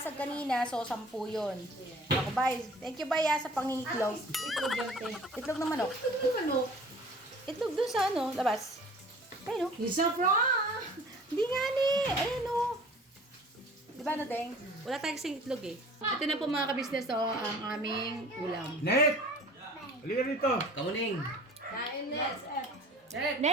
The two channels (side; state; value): both; normal; correlation 0.47